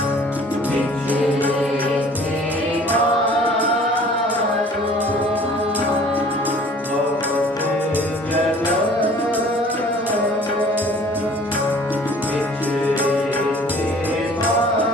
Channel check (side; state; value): both; normal; correlation 0.50